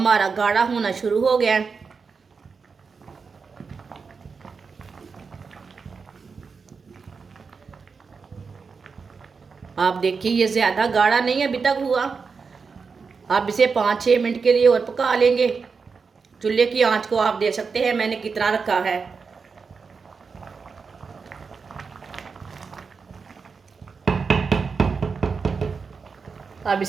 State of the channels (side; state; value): left; quieter; 5.1 dB